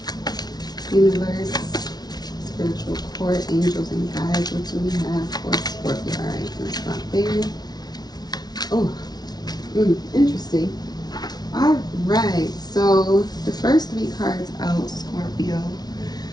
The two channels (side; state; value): right; late; 0.19 ms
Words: universe, spiritual court, angels and guides, what do we have for Scorpio? All right, let's stop there. Oh, interesting. All right, so the first 3 cards out, Scorpio,